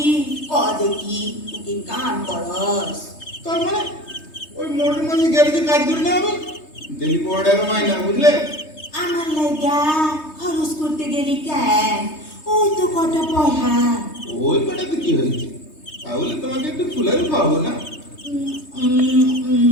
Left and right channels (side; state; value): right; late; 3.2 ms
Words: ক দেখি, তুই কি কাম করস? তার মানে ওই মোটর মাঝে গ্যারেজে কাজ করে না আমি ডেলি 15 টাকা মাইনা, বুঝলে? আমার লাগা খরচ করতে গেলি কেন? ওই তো কটা পয়সা। ওই কটাতে কি হয়েছে? তাহলে তোমাকে একটু ফুলেরি খাওয়াবো না?